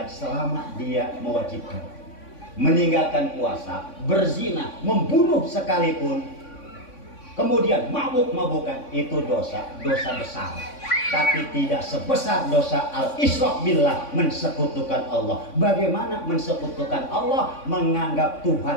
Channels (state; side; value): late; right; 3.5 ms